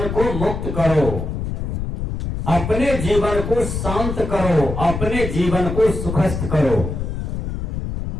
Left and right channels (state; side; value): noise; left; rumble, 4 dB below the sound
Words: को मुक्त करो, अपने जीवन को शांत करो, अपने जीवन को सुखस्थ करो।